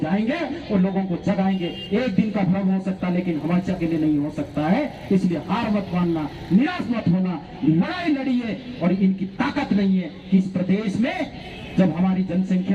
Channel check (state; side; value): identical; both; correlation 1.00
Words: जाएंगे और लोगों को जगाएंगे। एक दिन का भ्रम हो सकता है लेकिन हमेशा के लिए नहीं हो सकता है। इसलिए हार मत मानना, निराश मत होना, लड़ाई लड़िए। और इनकी ताकत नहीं है कि इस प्रदेश में जब हमारी